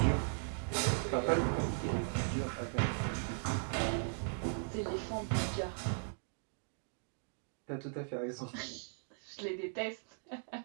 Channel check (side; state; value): left; silent; digital silence